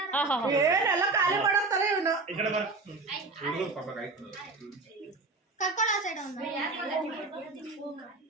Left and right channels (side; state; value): left; quieter; 3.7 dB